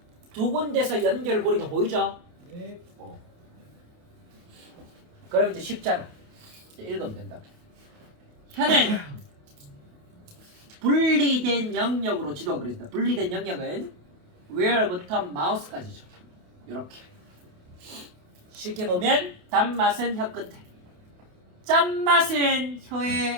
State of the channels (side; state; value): left; late; 28 ms